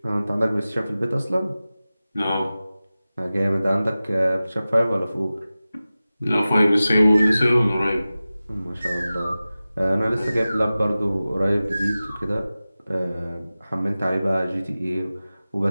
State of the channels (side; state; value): both; inverted; correlation -0.96